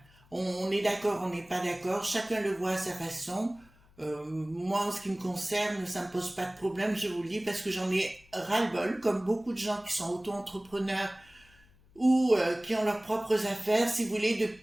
On est d'accord, on n'est pas d'accord, chacun le voit à sa façon. Moi, en ce qui me concerne, ça me pose pas de problème, je vous le dis, parce que j'en ai ras-le-bol, comme beaucoup de gens qui sont auto-entrepreneurs ou qui ont leurs propres affaires, si vous voulez, de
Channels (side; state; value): left; noise; hum, 28 dB below the sound